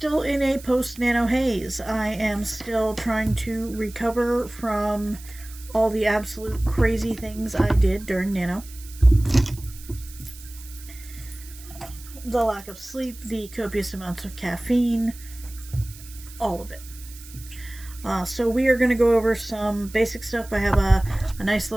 in a post-Nano haze. I am still trying to recover from all the absolute crazy things I did during Nano. The lack of sleep, the copious amounts of caffeine, all of it. So we are going to go over some basic stuff. I have a nice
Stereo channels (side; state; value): right; noise; hiss, 18 dB below the sound